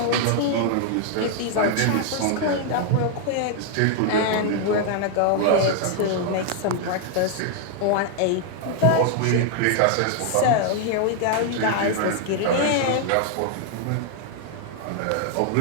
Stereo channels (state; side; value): different; both; correlation 0.00